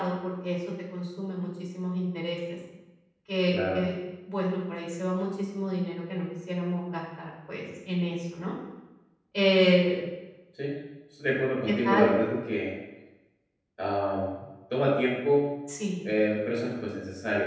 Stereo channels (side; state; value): both; identical; correlation 1.00